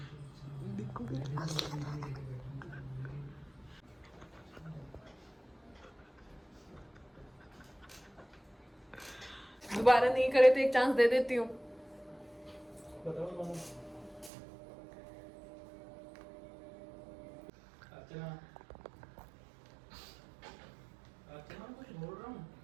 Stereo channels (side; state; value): left; drops out; at 14.3 s